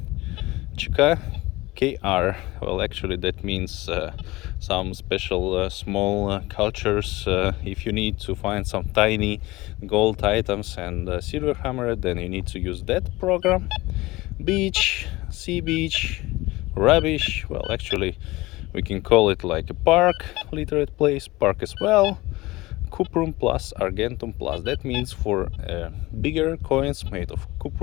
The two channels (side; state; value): right; quieter; 20.3 dB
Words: Chika, KR. Well, actually that means some special small cultures. If you need to find some tiny gold items and silver hammer, then you need to use that program. Beach, sea beach, rubbish. Well, actually we can call it like a park, literate place, park as well. Cuprum plus argentum plus, that means for bigger coins made of